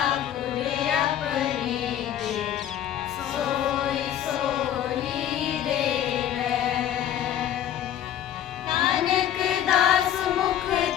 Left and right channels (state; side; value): quieter; right; 10.7 dB